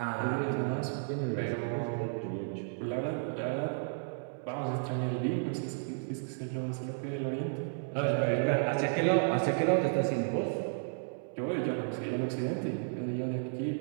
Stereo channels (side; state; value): left; silent; digital silence